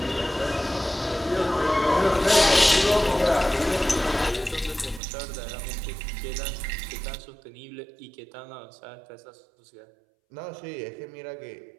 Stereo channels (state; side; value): drops out; left; at 5.0 s